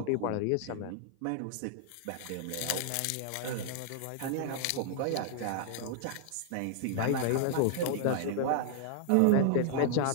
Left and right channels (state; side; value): different; both; correlation -0.01